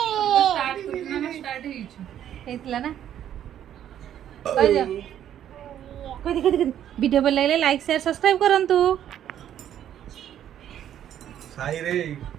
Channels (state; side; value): quieter; left; 10.6 dB